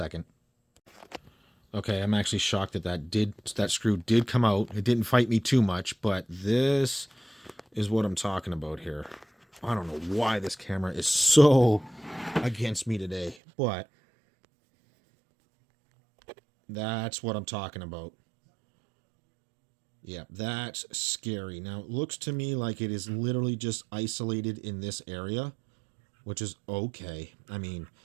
Okay, I'm actually shocked that that screw did come out. It didn't fight me too much, but this is what I'm talking about here. I don't know why this camera is so against me today, but that's what I'm talking about. Yeah, that's scary. Now, it looks to me like it is literally just isolated in this area, which is okay. I mean,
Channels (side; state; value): left; drops out; at 13.4 s